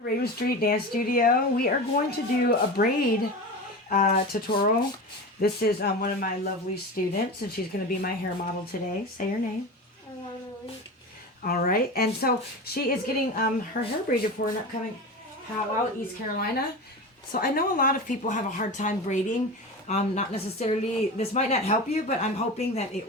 Raven Street Dance Studio. We are going to do a braid tutorial. This is one of my lovely students, and she's going to be my hair model today. Say her name. Alana Lynch. All right, and so she is getting her hair braided for an upcoming powwow, East Carolina. So I know a lot of people have a hard time braiding. Not necessarily, this might not help you, but I'm hoping that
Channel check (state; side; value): normal; both; correlation 0.27